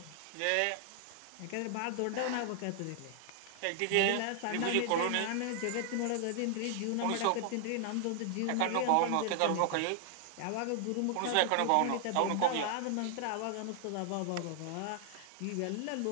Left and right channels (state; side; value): different; both; correlation 0.00